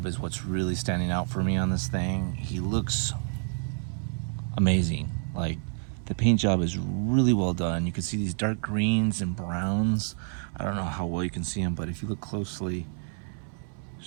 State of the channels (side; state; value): left; silent; 59 dB below the other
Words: is what's really standing out for me on this thing. He looks amazing. Like, the paint job is really well done. You can see these dark greens and browns. I don't know how well you can see them, but if you look closely,